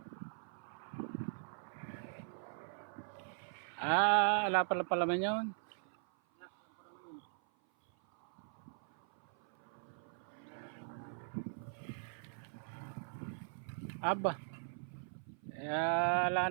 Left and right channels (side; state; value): left; silent; 51 dB below the other